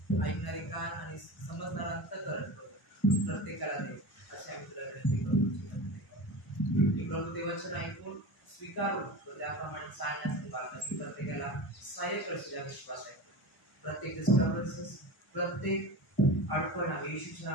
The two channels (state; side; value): late; right; 1.0 ms